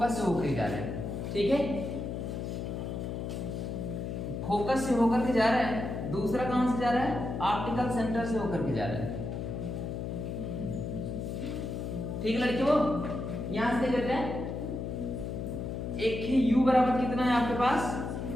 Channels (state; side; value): noise; left; hum, 4 dB below the sound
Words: से होकर जा रहा है, ठीक है। फोकस से होकर के जा रहा है, दूसरा कहां से जा रहा है, ऑप्टिकल सेंटर से होकर के जा रहा है, ठीक है लड़कियों। यहां से देख हैं एक ही u बराबर कितना है आपके पास